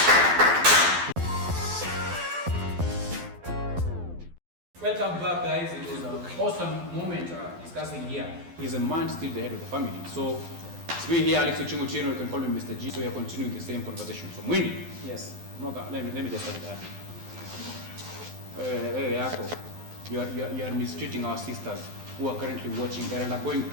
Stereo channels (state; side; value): late; left; 12 ms